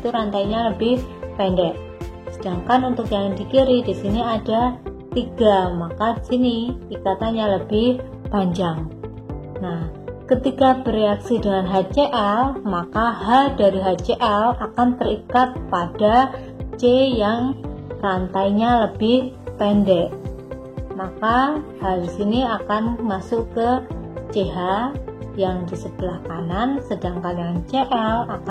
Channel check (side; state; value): both; identical; correlation 1.00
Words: rantainya lebih pendek. Sedangkan untuk yang di kiri di sini ada 3, maka di sini ikatannya lebih panjang. Nah, ketika bereaksi dengan HCl, maka H dari HCl akan terikat pada C yang rantainya lebih pendek. Maka H di sini akan masuk ke CH yang di sebelah kanan, sedangkan yang Cl